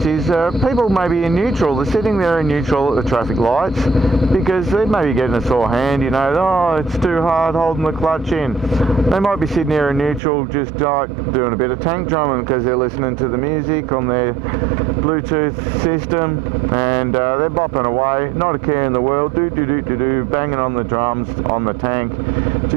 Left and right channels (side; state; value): left; drops out; at 10.2 s